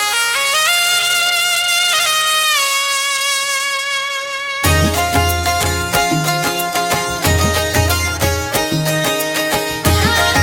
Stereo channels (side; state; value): both; identical; correlation 1.00